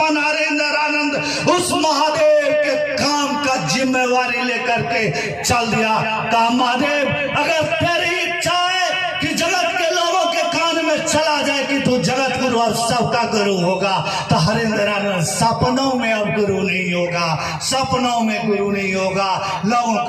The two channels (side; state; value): both; identical; correlation 1.00